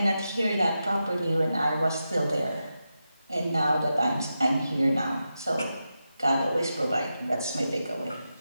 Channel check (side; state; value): both; inverted; correlation -0.89